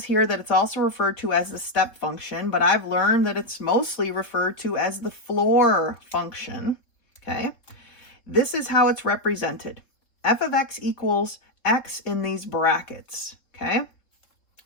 here that it's also referred to as the step function, but I've learned that it's mostly referred to as the floor function, okay? This is how it's represented. F of x equals x in these brackets, okay?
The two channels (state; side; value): late; right; 3.5 ms